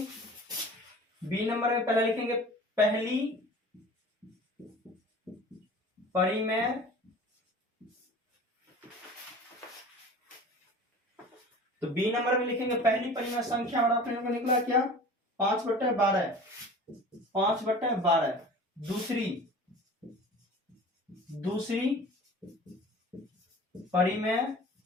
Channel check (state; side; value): normal; both; correlation 0.41